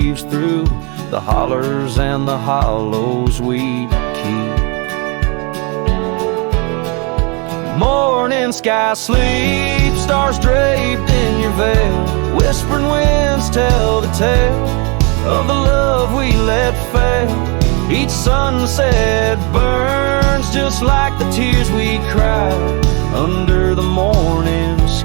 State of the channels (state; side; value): quieter; left; 31.5 dB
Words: through the hollers and the hollows we keep. Morning sky sleeps stars draped in your veil. Whispering winds tell the tale of the love we let fail. Each sunset burns just like the tears we cried under the morning